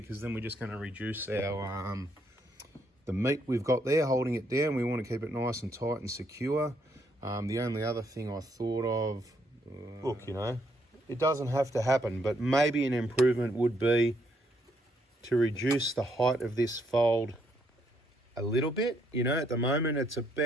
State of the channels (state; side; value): normal; both; correlation 0.73